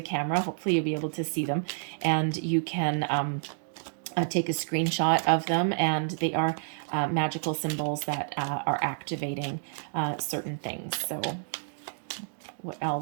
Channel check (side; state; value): left; silent; digital silence